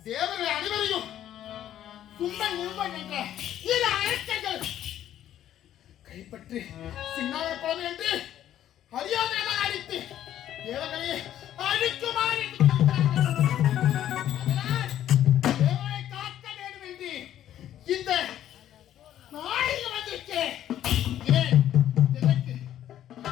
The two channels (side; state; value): right; quieter; 11.6 dB